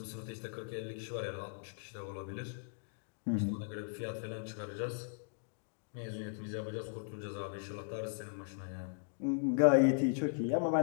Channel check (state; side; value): silent; right; digital silence